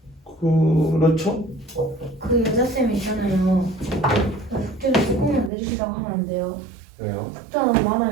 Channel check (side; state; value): left; drops out; at 5.5 s